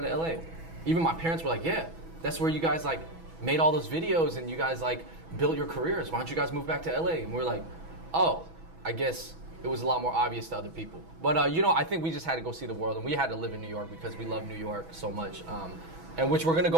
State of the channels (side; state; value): left; late; 6.1 ms